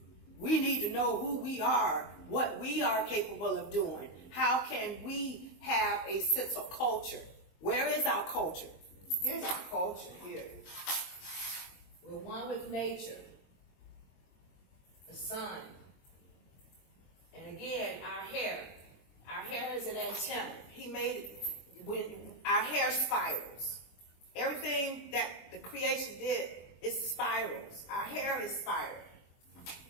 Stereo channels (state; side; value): late; right; 22 ms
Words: We need to know who we are, what we are capable of doing. How can we have a sense of culture? Where is our culture? Here's our culture here. We're one with nature, the sun. And again, our hair. Our hair is an antenna. He made it when our hair spirals. Everything that the creation did is spirals. Our hair is spiral.